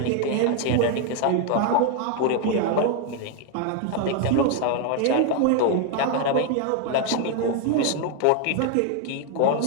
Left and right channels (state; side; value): different; both; correlation 0.01